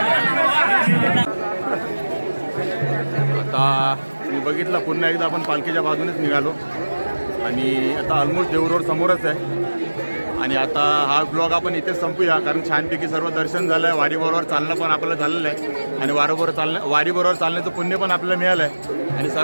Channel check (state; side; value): inverted; both; correlation -1.00